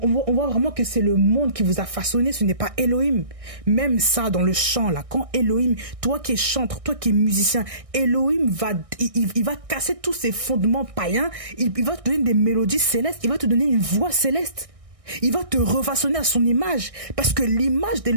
voit vraiment que c'est le monde qui vous a façonné, ce n'est pas Elohim. Même ça dans le chant là, quand Elohim, toi qui es chanteur, toi qui es musicien, Elohim il va casser tous ces fondements païens, il va te donner des mélodies célestes, il va te donner une voix céleste. Il va te refaçonner à son image. Parce que l'image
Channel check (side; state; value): left; late; 1.6 ms